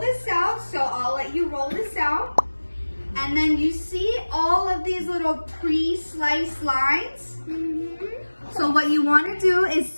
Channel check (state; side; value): inverted; both; correlation -1.00